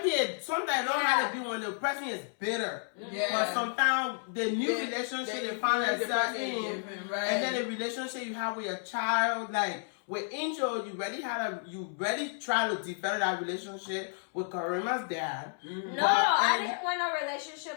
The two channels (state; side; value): silent; right; 57 dB below the other